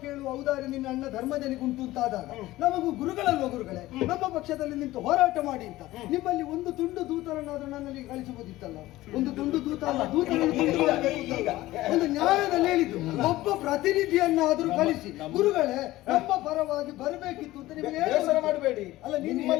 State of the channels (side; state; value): right; quieter; 17.0 dB